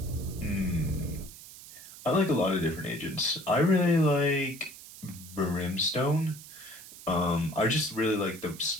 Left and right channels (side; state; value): right; noise; hiss, 17 dB below the sound